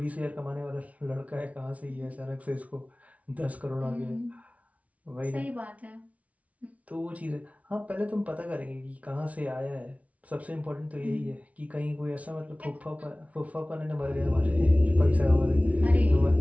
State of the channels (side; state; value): left; late; 0.067 ms